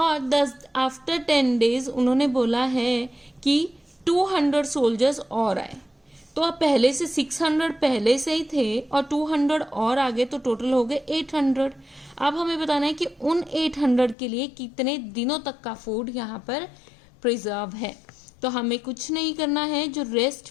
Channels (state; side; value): drops out; right; at 14.2 s